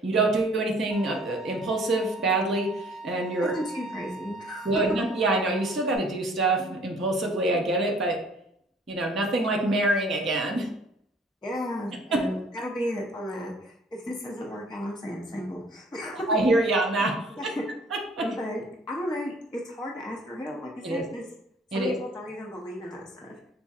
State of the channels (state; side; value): normal; both; correlation 0.55